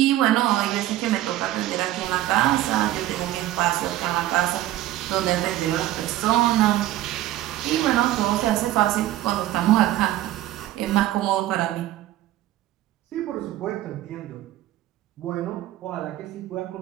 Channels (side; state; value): left; quieter; 14.6 dB